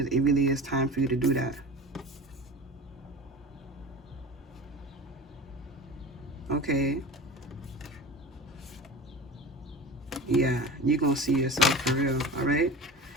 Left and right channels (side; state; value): both; normal; correlation 0.34